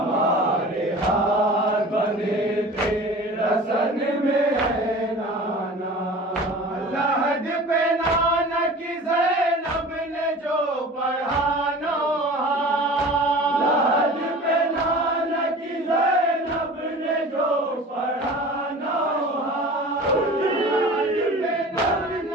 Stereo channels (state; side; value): normal; both; correlation 0.40